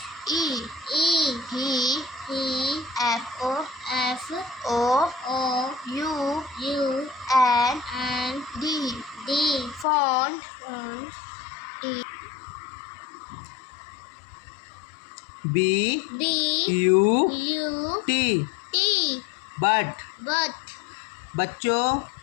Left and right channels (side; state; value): right; drops out; at 9.9 s